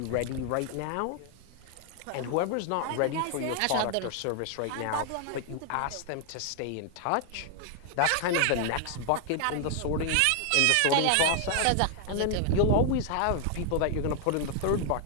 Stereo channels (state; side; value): different; both; correlation 0.00